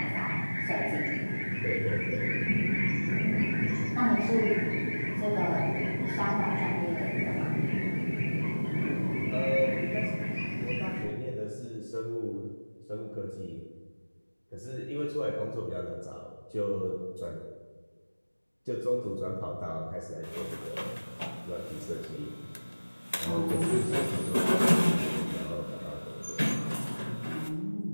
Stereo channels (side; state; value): both; inverted; correlation -1.00